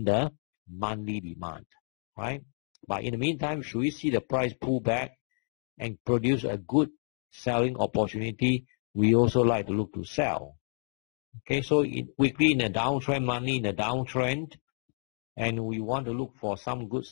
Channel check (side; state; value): right; silent; 58 dB below the other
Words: the monthly demand, right? But in the meantime, should we see the price pull back and produce a good selling opportunity, we also like to look to sell. Okay, so weekly in a downtrend, monthly in a downtrend, and we want to look for some good